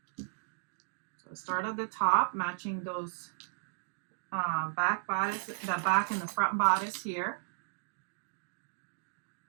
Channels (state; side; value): silent; left; digital silence